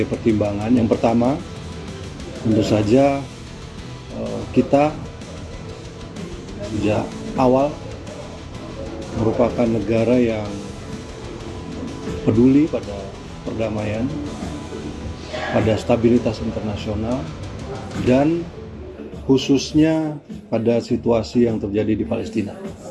pertimbangan. Yang pertama, tentu saja kita sejak awal merupakan negara yang peduli pada perdamaian, pada stabilitas internasional, dan khususnya pada situasi yang terjadi di Palestina.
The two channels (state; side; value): identical; both; correlation 1.00